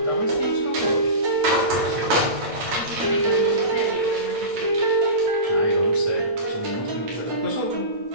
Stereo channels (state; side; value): late; left; 8.9 ms